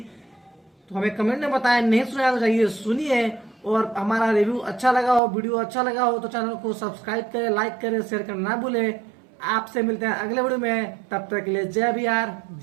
तो हमें कमेंट में बताएं। नहीं सुना तो चाहिए सुनिए। और हमारा रिव्यू अच्छा लगा हो, वीडियो अच्छा लगा हो तो चैनल को सब्सक्राइब करें, लाइक करें, शेयर करना ना भूलें। आपसे मिलते हैं अगले वीडियो में। तब तक के लिए जय बिहार,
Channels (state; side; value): drops out; left; at 5.2 s